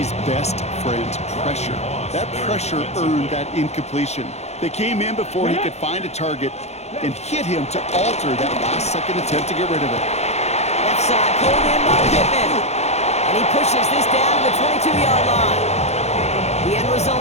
best friend, pressure. That pressure earned that incompletion. They came in before he could find a target and hit him to alter that last-second attempt to get rid of it. Left side, pulled in by Pittman. And he pushes this down to the 22-yard line. The end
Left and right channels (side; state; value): right; late; 0.31 ms